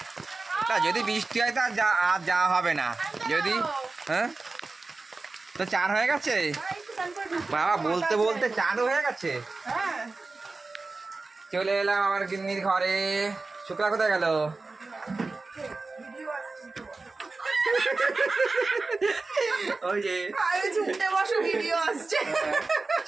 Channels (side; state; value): left; quieter; 3.6 dB